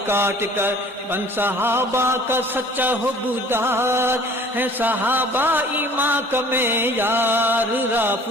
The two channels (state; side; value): normal; both; correlation 0.50